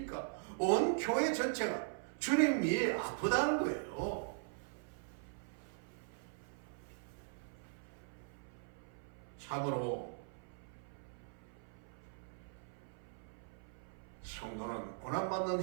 온 교회 전체가 주님이 아프다는 거예요. 참으로 성도는 고난받는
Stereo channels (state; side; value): silent; left; 51 dB below the other